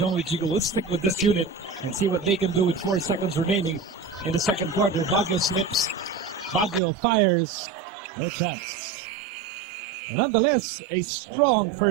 Wichigo will stick with this unit and see what they can do with 4 seconds remaining in the second quarter. Baguio slips. Baguio fires. No chance. And nonetheless, a strong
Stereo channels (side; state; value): left; drops out; at 6.8 s